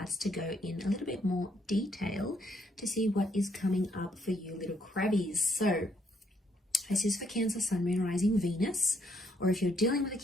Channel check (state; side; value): normal; both; correlation 0.72